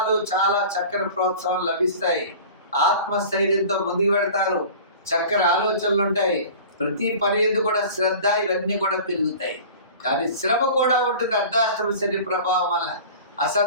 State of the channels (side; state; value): both; inverted; correlation -0.40